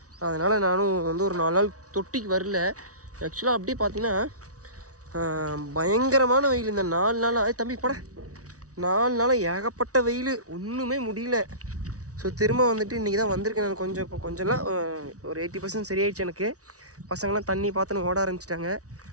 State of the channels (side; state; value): left; late; 0.67 ms